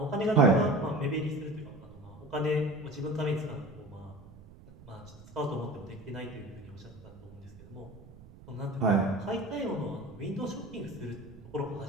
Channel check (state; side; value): noise; right; rumble, 20 dB below the sound